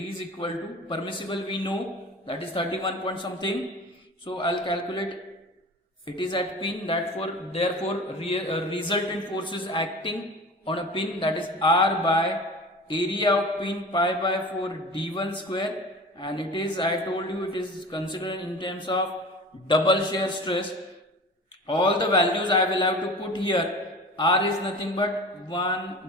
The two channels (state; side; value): normal; both; correlation 0.37